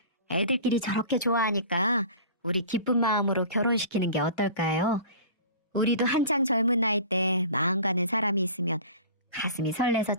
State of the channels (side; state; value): both; inverted; correlation -0.41